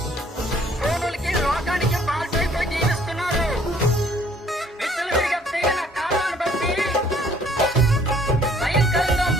ఫోనులకి లోకానికి బాల్చైపోయి జీవిస్తున్నారు. విచ్చలవిడిగా తెగిన కాలాన్ని బట్టి భయంకరంగా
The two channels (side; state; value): both; normal; correlation 0.60